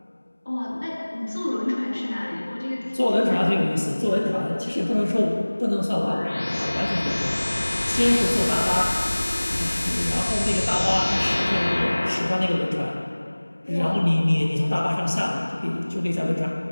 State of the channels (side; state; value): both; inverted; correlation -1.00